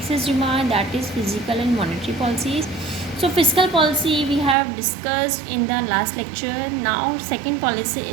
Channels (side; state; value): left; drops out; at 4.5 s